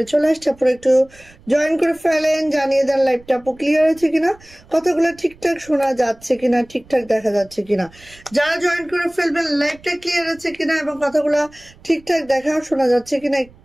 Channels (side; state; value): right; noise; rumble, 26 dB below the sound